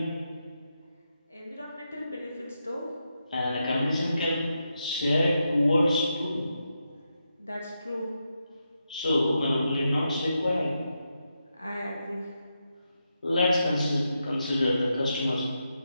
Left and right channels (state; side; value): inverted; both; correlation -0.85